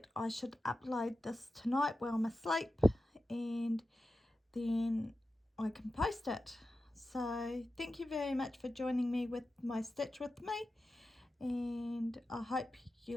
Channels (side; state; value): both; normal; correlation 0.92